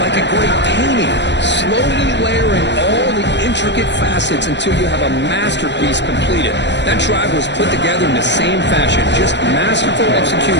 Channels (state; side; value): late; right; 0.51 ms